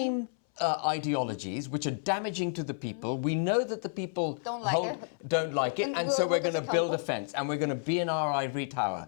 ideologies which are damaging to the people. We know that the people don't like it. And so we're going to build a fence and we're going to be in our ivory tower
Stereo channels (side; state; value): right; silent; 57 dB below the other